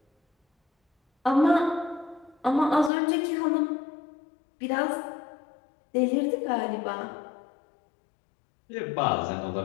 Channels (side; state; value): right; drops out; at 2.9 s